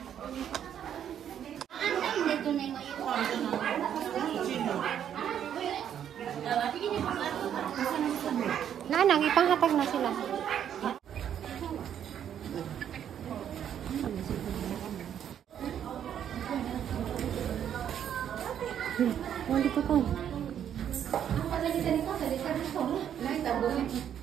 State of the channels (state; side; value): quieter; left; 9.4 dB